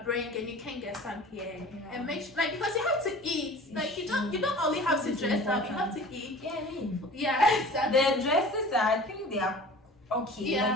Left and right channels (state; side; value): normal; both; correlation 0.42